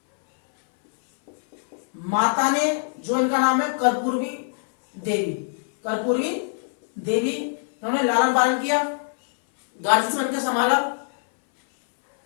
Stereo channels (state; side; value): silent; right; 63 dB below the other